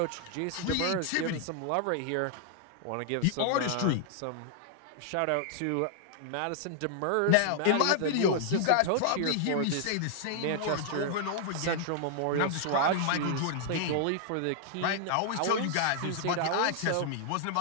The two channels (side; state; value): both; different; correlation -0.01